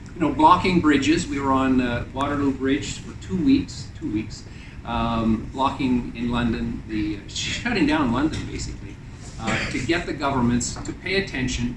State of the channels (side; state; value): both; identical; correlation 1.00